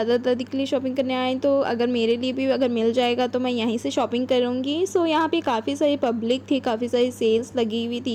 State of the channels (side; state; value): both; identical; correlation 1.00